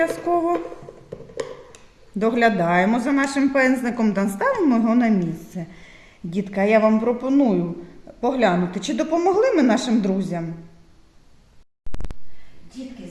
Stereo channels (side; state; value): both; identical; correlation 1.00